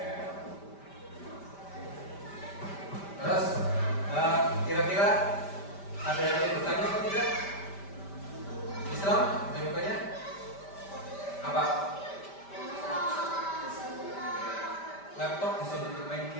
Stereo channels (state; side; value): late; right; 5.1 ms